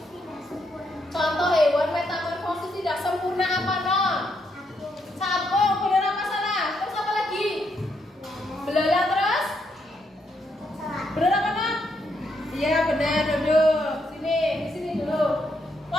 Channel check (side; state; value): both; normal; correlation 0.77